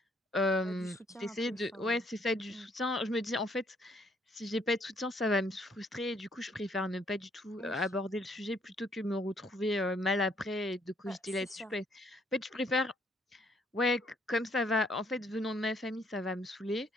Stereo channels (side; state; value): both; normal; correlation 0.67